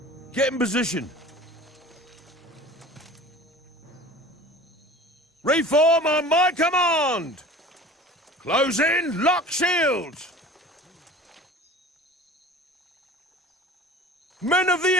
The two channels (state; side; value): normal; both; correlation 0.41